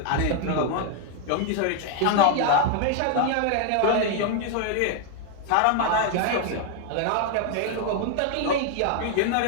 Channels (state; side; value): different; both; correlation 0.00